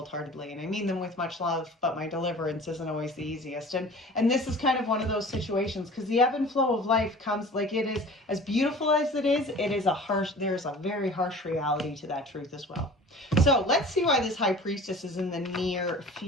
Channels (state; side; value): normal; both; correlation 0.43